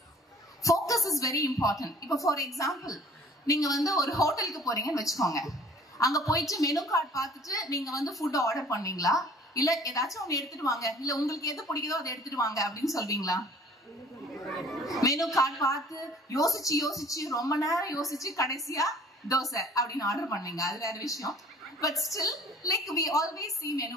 இஸ் வெரி இம்பார்ட்டன்ட். இப்போ ஃபார் எக்ஸாம்பிள், நீங்க வந்து ஒரு ஹோட்டலுக்கு போறீங்கன்னு வச்சுக்கோங்க. அங்க போயிட்டு மெனு கார்டு பார்த்துட்டு நீங்க வந்து ஃபுட் ஆர்டர் பண்ணீங்களா, இல்ல ஏதாச்சும் ஒண்ணு எடுத்துட்டு வாங்க, இல்ல உங்களுக்கு எது பிடிக்குதோ அதை எடுத்துட்டு வாங்க அப்படின்னு சொல்வீங்களா? மெனு கார்டு பார்த்து யோசிச்சு ரொம்ப நேரம் யோசிச்சு கடைசியா தோசை அப்படின்னு ஆர்டர் பண்ணீங்க, அது வேற விஷயம். But still, like we always see menu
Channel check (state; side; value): normal; both; correlation 0.51